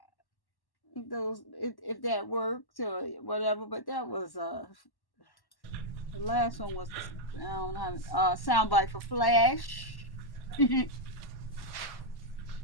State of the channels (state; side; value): late; right; 1.1 ms